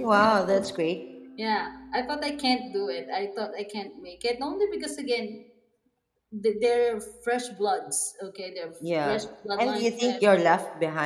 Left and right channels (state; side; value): identical; both; correlation 1.00